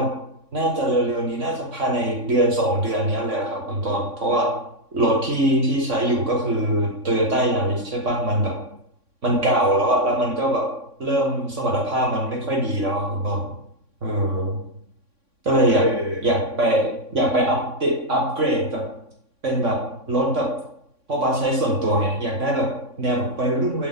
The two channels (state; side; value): late; left; 3.6 ms